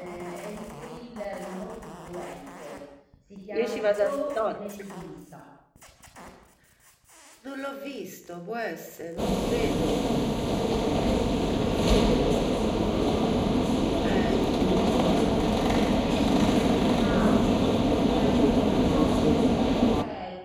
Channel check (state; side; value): identical; both; correlation 1.00